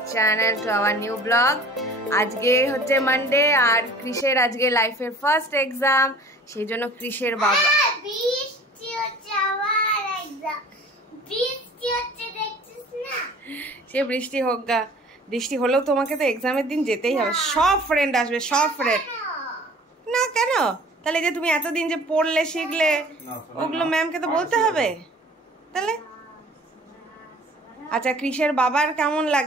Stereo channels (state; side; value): normal; both; correlation 0.48